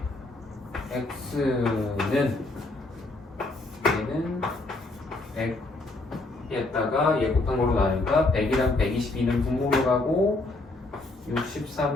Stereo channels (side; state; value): right; quieter; 3.0 dB